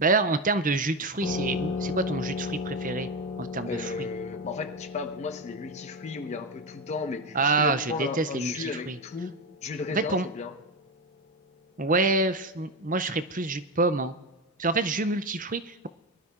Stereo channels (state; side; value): normal; both; correlation 0.15